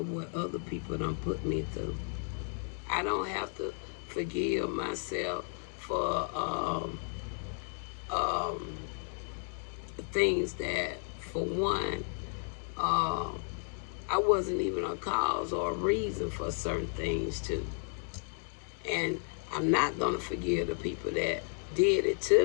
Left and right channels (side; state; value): right; silent; 56 dB below the other